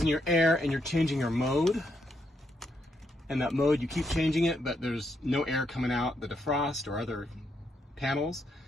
your air and you're changing your mode, and that mode you keep changing it, but there's no air coming out the defrost or other panels.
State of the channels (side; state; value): both; normal; correlation 0.78